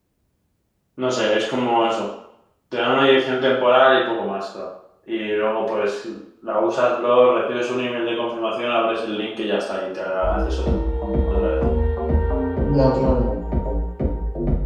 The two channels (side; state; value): both; identical; correlation 1.00